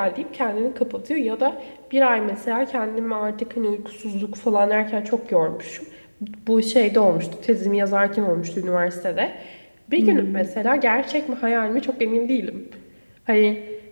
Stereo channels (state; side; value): inverted; both; correlation -1.00